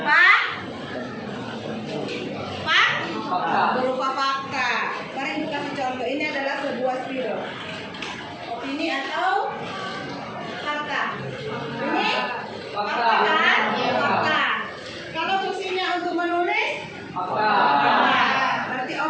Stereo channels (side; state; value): both; identical; correlation 1.00